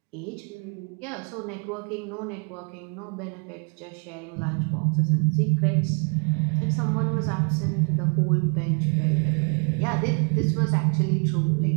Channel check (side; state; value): left; quieter; 39.2 dB